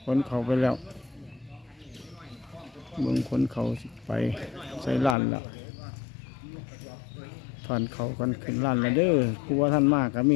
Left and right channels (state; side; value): drops out; right; at 5.2 s